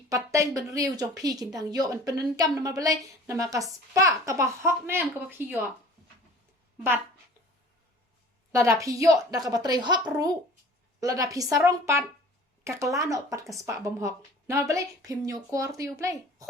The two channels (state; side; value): normal; both; correlation 0.46